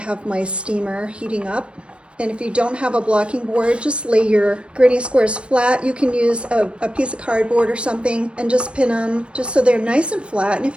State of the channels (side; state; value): left; late; 0.058 ms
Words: my steamer heating up. And if you don't have a blocking board, just lay your granny squares flat. You can use a piece of cardboard or something and just pin them just so they're nice and flat. And if